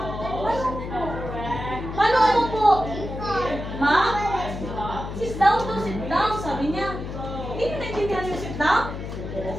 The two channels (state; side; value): noise; left; hum, 7 dB below the sound